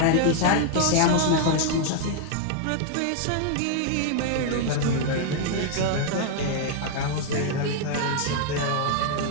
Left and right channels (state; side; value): different; both; correlation 0.00